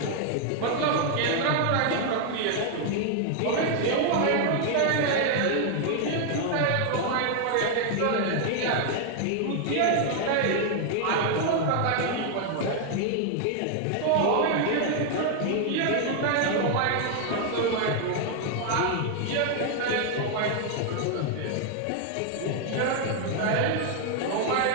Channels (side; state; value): both; different; correlation 0.00